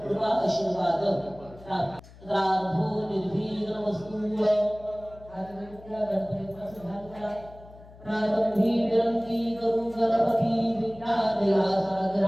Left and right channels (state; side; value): noise; left; hum, 21 dB below the sound